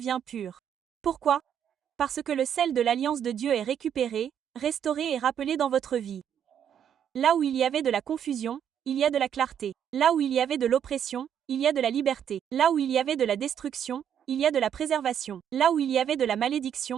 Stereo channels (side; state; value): left; quieter; 9.0 dB